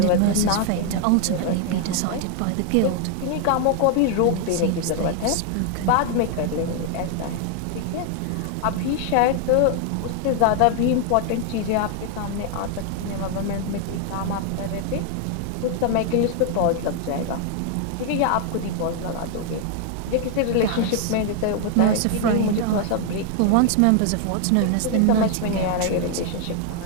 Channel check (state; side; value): different; both; correlation 0.00